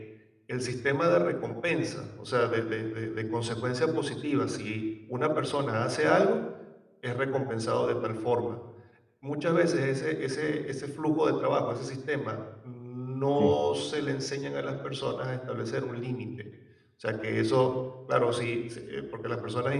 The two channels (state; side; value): identical; both; correlation 1.00